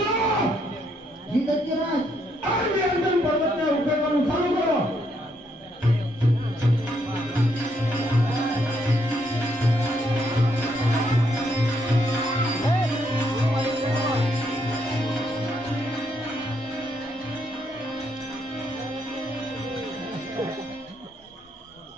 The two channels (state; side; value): normal; both; correlation 0.74